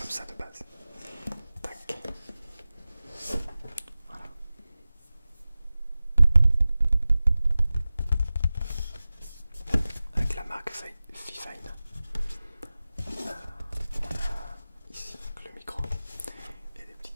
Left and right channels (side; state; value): both; inverted; correlation -0.96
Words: ça de base. Tac. Voilà. Avec la marque Fifine. On a ici le micro et des